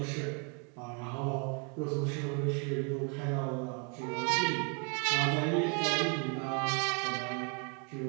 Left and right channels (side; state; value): left; quieter; 36.2 dB